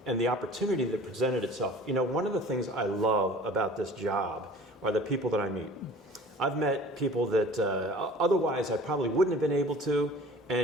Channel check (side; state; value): both; normal; correlation 0.45